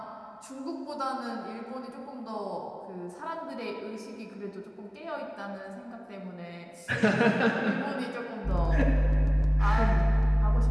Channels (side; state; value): both; identical; correlation 1.00